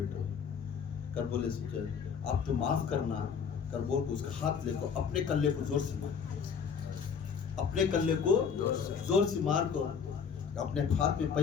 کر بولے سوچے آپ تو معاف کرنا, کر بول کو اس کا ہاتھ لے کو اپنے کلے کو زور سے مار, اپنے کلے کو زور سے مار کو. اپنے ہاتھ میں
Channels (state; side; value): quieter; right; 6.6 dB